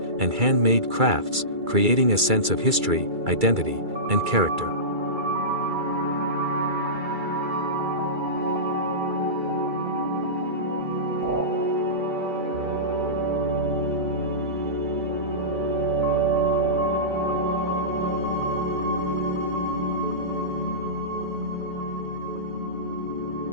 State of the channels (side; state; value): left; late; 2.3 ms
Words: and handmade crafts, creating a sense of history, identity, and character.